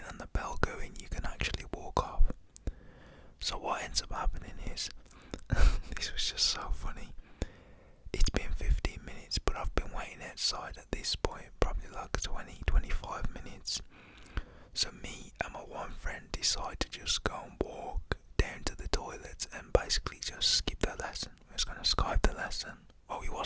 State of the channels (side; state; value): both; identical; correlation 1.00